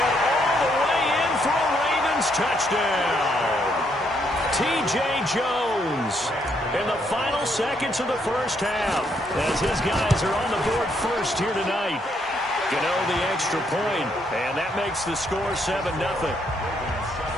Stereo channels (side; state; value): both; normal; correlation 0.73